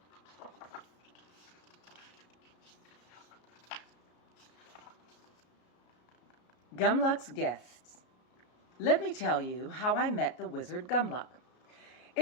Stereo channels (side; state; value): right; late; 33 ms